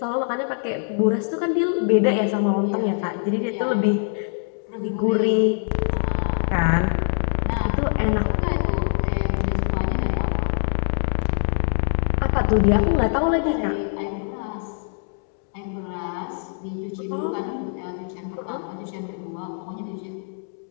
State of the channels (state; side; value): silent; right; 63 dB below the other